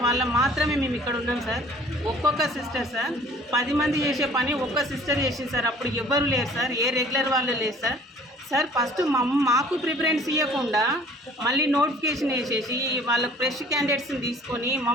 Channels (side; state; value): both; normal; correlation 0.53